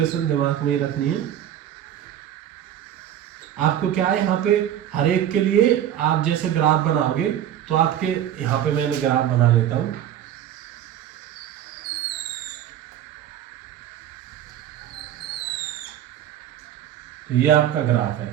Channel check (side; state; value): left; quieter; 10.9 dB